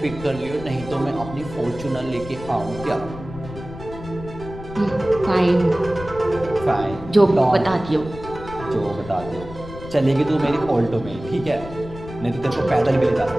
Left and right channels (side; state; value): left; noise; rumble, 13 dB below the sound